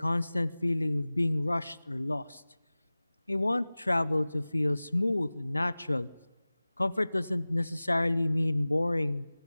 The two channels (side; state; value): both; inverted; correlation -0.99